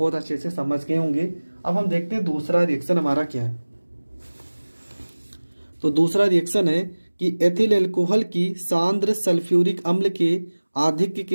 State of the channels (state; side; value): inverted; both; correlation -1.00